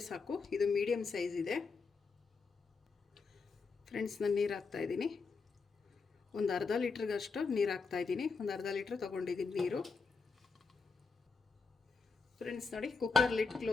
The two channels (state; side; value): quieter; right; 4.6 dB